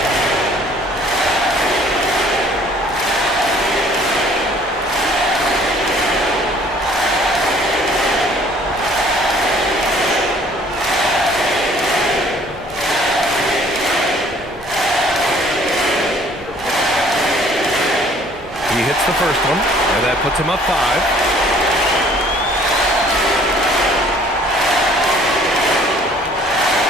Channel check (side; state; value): both; normal; correlation 0.56